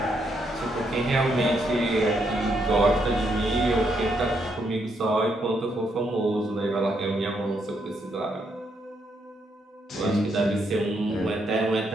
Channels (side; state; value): both; normal; correlation 0.76